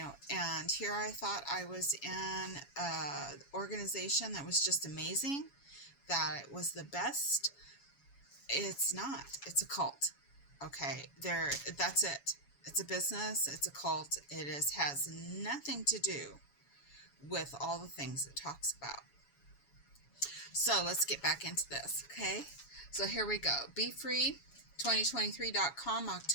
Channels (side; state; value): right; late; 7.1 ms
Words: and here I thought I was in an organization that was just amazing, that it was the best. It's not. It's a cult. Okay, that's it. It's a business. It's a cult. It has nothing to do with all the things it talks about. So let's get back into this, okay? So here we go. BeFree2023.com,